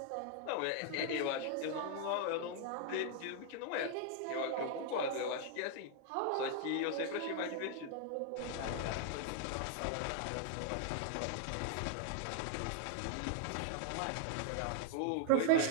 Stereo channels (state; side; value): different; both; correlation 0.00